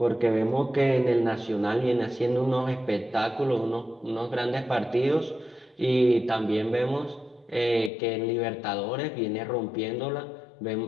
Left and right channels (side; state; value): right; drops out; at 7.9 s